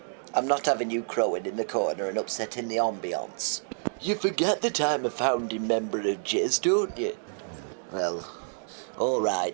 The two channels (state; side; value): silent; left; digital silence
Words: I'm not having you crowing in the corner and upsetting the ambience. You forget that I'm a founding member of Jizz, don't you? Well, all